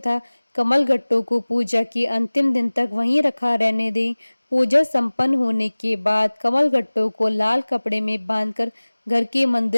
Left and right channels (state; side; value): inverted; both; correlation -1.00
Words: कमल गट्टों को पूजा के अंतिम दिन तक वहीं रखा रहने दें। पूजा संपन्न होने के बाद कमल गट्टों को लाल कपड़े में बांधकर घर के